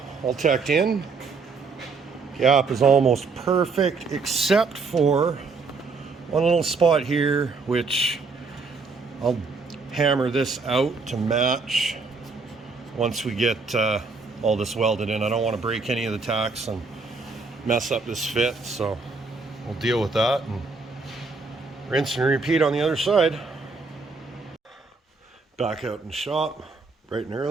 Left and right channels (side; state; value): left; quieter; 4.3 dB